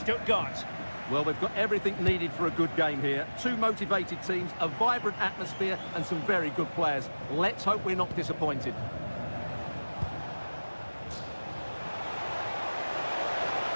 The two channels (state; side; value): inverted; both; correlation -1.00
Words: Well, we've got everything needed for a good game here. Two motivated teams, a vibrant atmosphere and some very good players. Let's hope we're not disappointed.